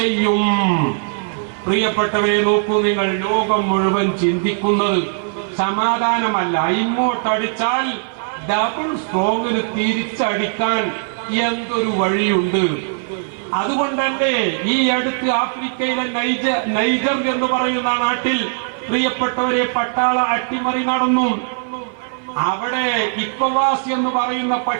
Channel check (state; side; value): silent; left; 56 dB below the other